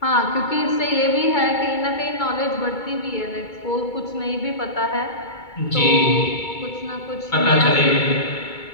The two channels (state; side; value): late; right; 2.2 ms